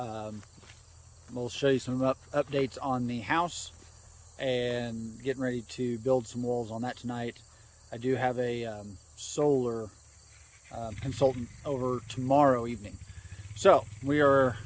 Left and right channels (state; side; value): identical; both; correlation 1.00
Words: show you some updates on the house and getting ready to build some walls on that tonight. I do have a solar consultant over tomorrow evening. So we are